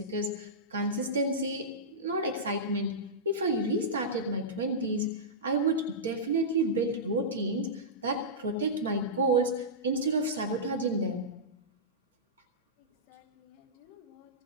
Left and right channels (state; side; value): normal; both; correlation -0.15